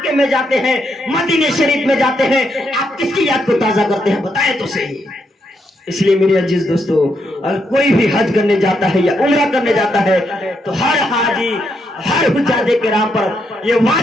میں جاتے ہیں، مدینہ شریف میں جاتے ہیں، آپ کس کی یاد کو تازہ کرتے ہیں؟ بتائیں تو صحیح۔ اس لیے میرے عزیز دوستو، اگر کوئی بھی حج کرنے جاتا ہے یا عمرہ کرنے جاتا ہے تو ہر حاجی، ہر حجاج کرام پر یہ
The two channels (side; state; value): both; normal; correlation 0.79